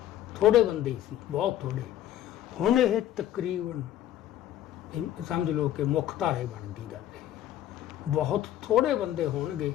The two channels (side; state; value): right; quieter; 12.2 dB